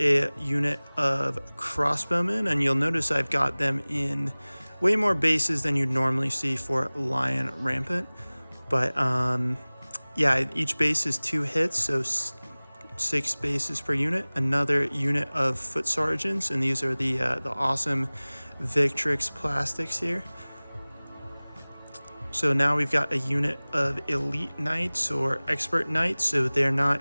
unit of crossbowmen, and you'll notice I've got them in way more bases than you'd normally see for Lion Rampant. But yeah, each base is 2 hits, so 6 bases per unit. Another unit of foot sergeants, and these are the awesome Victrix plastics here. So now we've got a unit of elite knights or expert knights. So they're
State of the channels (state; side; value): inverted; both; correlation -1.00